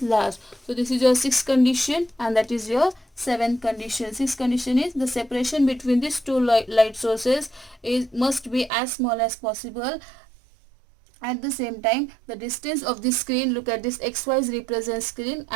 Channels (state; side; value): drops out; left; at 8.7 s